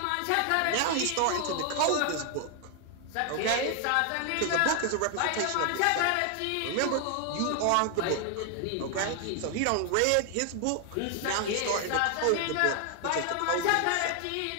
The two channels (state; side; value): different; both; correlation 0.00